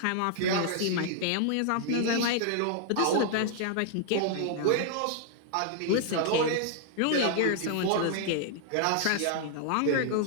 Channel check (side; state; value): both; different; correlation -0.01